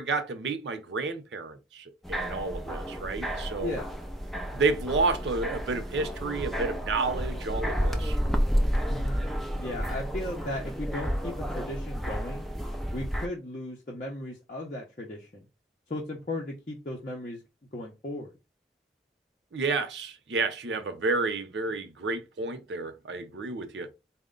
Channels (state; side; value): normal; both; correlation 0.51